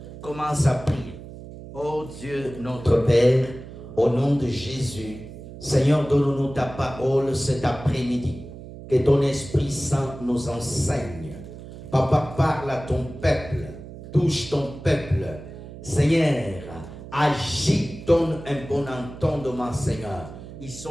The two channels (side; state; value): right; noise; hum, 14 dB below the sound